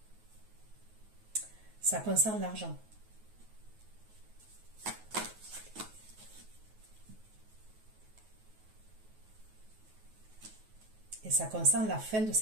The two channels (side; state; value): left; late; 9.3 ms